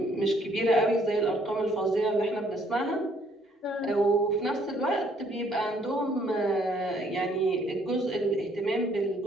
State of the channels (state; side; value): normal; both; correlation 0.65